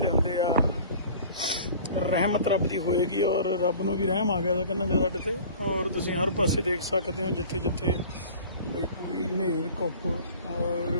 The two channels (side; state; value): both; inverted; correlation -0.44